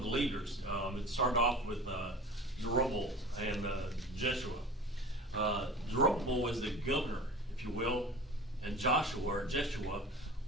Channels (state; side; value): normal; both; correlation 0.38